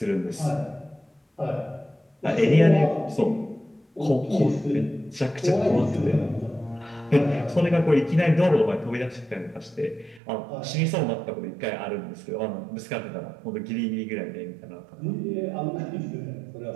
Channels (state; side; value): drops out; left; at 10.2 s